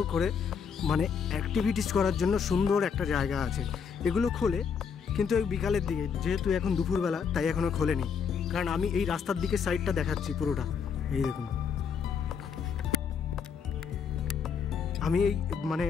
করে মানে অ্যাক্টিভিটিস করার জন্য সুন্দর একটা জায়গা আছে। এগুলো খোলে কিন্তু ওই বিকালের দিকে, যেহেতু এখন দুপুরবেলা তাই এখনও খোলেনি। কারণ আমি এই রাস্তার দিকে সাইডটা দেখাচ্ছি পুরোটা, এই দেখুন। আমি এই মানে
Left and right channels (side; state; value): right; quieter; 6.5 dB